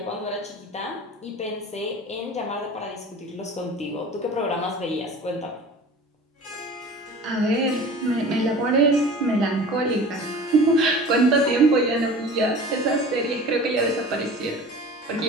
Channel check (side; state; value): both; normal; correlation 0.40